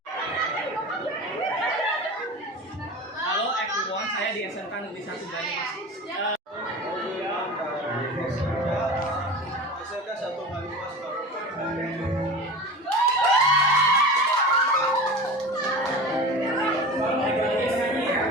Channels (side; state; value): both; normal; correlation 0.32